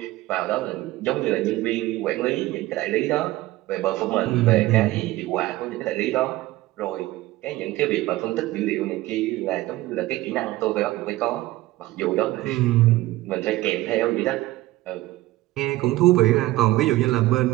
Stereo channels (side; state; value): left; quieter; 17.4 dB